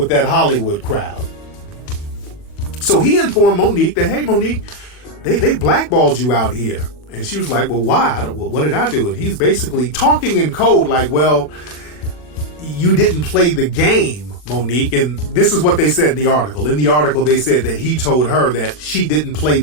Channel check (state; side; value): late; right; 40 ms